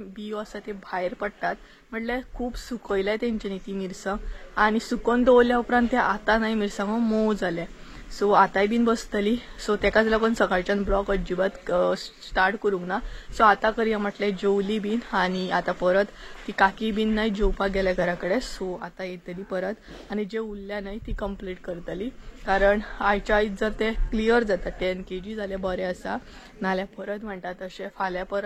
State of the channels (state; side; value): identical; both; correlation 1.00